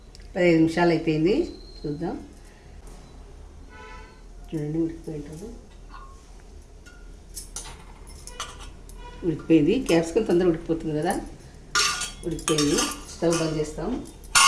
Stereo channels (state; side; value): identical; both; correlation 1.00